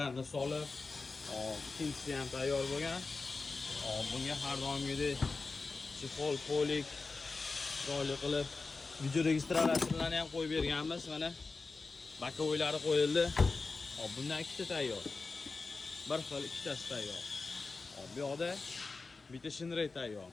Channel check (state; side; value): quieter; right; 4.0 dB